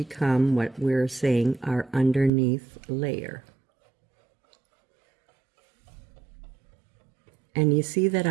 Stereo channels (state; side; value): drops out; left; at 2.3 s